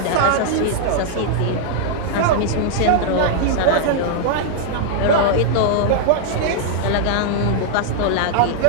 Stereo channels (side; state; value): both; different; correlation -0.01